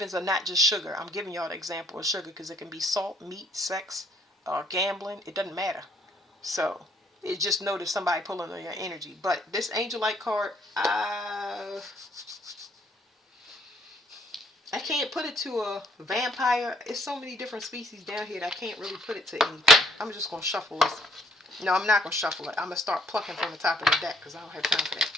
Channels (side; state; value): both; normal; correlation 0.65